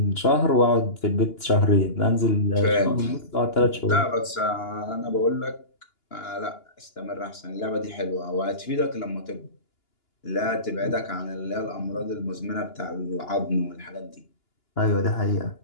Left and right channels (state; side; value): late; right; 2.9 ms